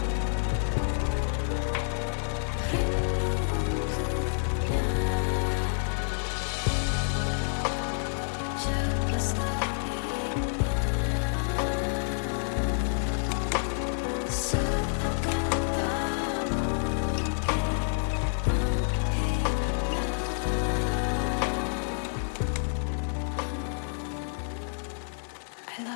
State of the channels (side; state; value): right; silent; 59 dB below the other